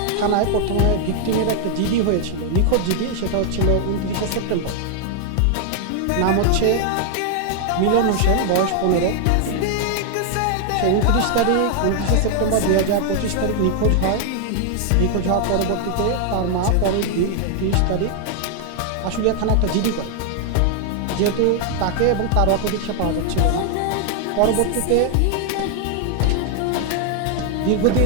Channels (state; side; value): different; both; correlation 0.00